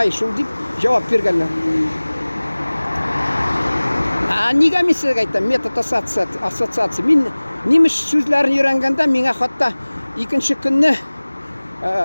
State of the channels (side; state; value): both; inverted; correlation -1.00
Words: шул дип җавап биргәннәр. Нигә мин сезгә әйтәм, метод ассоциация. Мин немец сүзләрен өйрәнгәндә миңа хатта икенче көнне